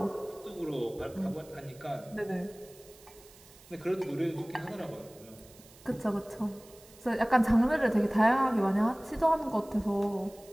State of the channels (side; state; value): right; noise; hiss, 23 dB below the sound